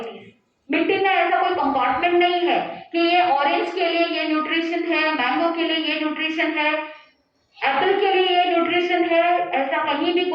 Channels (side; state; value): both; identical; correlation 1.00